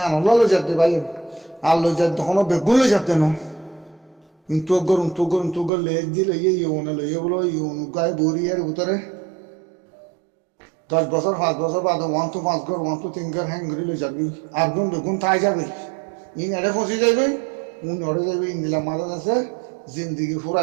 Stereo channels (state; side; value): drops out; left; at 5.7 s